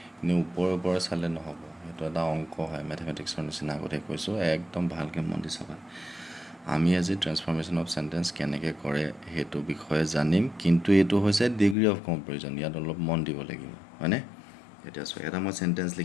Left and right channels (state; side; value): drops out; right; at 11.8 s